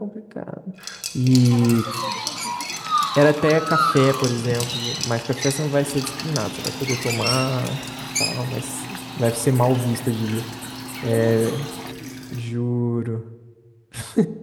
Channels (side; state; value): both; identical; correlation 1.00